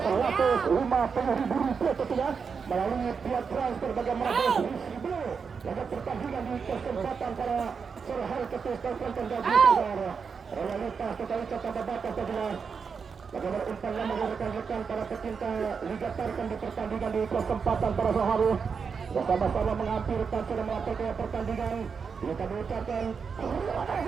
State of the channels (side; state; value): left; quieter; 5.8 dB